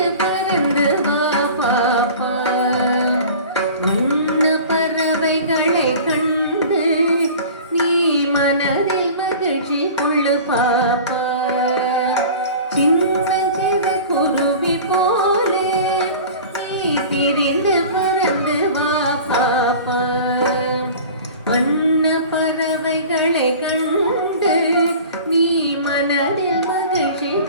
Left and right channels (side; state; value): both; inverted; correlation -0.40